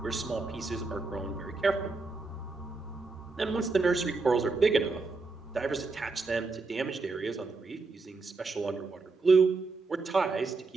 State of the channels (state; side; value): quieter; left; 3.8 dB